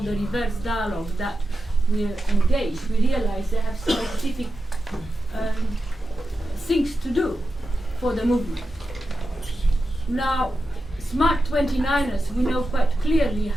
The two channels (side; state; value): both; normal; correlation 0.91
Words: reverse dialogue that we're engaged, we realize they have specific things to do for the movement. Now, Smart 29ers, we know quite clearly